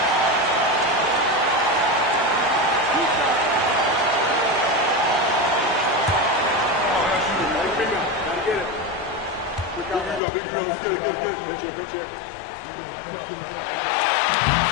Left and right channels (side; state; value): right; drops out; at 10.2 s